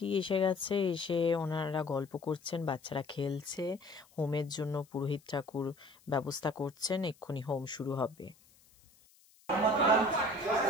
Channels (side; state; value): left; noise; hiss, 29 dB below the sound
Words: এসে গেছে, এসে ওনারা গল্প করছেন, বাচ্চারা খেলছে, হোমের জন্য পুরোহিত ঠাকুর ব্যবস্থা করছেন, এক্ষুনি হোম শুরু হবে।